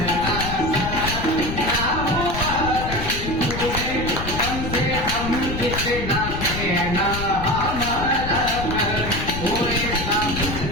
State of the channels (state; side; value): noise; left; rumble, 6 dB below the sound